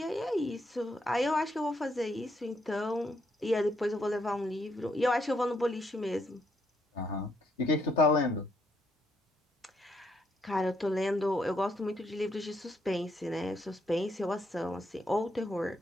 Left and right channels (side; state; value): both; normal; correlation 0.75